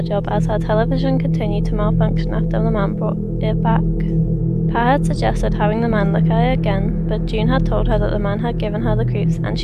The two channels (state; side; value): identical; both; correlation 1.00